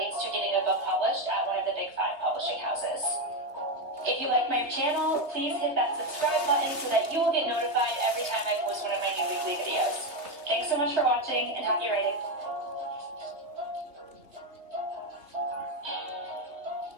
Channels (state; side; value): late; left; 3.2 ms